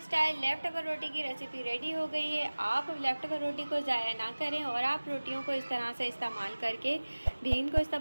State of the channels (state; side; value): inverted; both; correlation -1.00